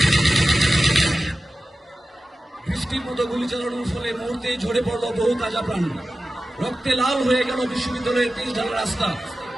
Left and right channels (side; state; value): both; normal; correlation 0.94